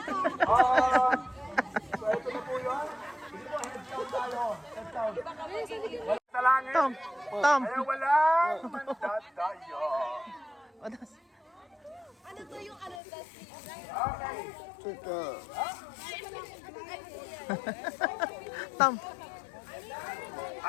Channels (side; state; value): right; drops out; at 13.0 s